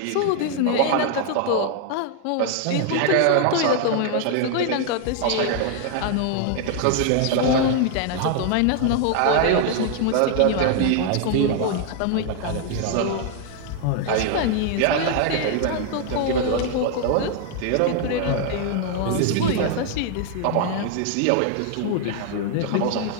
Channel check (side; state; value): both; different; correlation 0.00